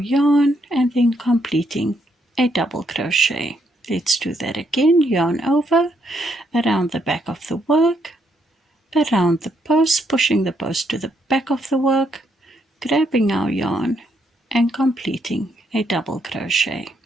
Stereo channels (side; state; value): both; normal; correlation 0.75